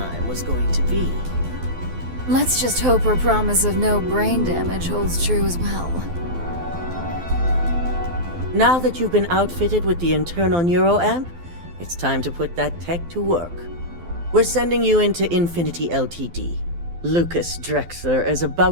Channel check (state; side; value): late; left; 12 ms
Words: was going to be. Let's just hope her promise of no brain damage holds true as well. Now that you've been outfitted with the internal neuroamp, it's time to put that tech to work. We're sending you into Infinity Ltd. Lucas Drexler is